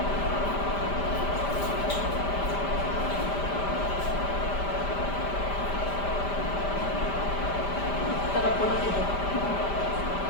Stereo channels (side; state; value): right; late; 5.0 ms